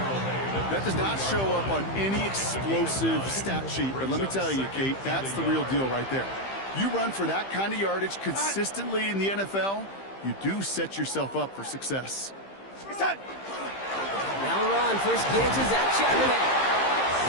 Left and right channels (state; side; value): late; right; 15 ms